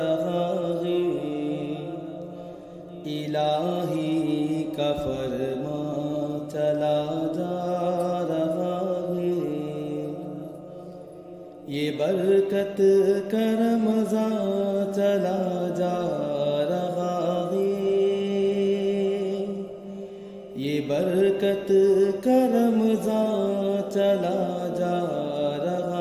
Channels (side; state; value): both; identical; correlation 1.00